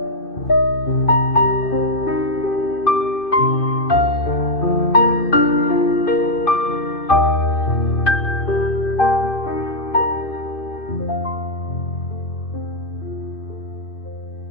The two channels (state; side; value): late; right; 2.5 ms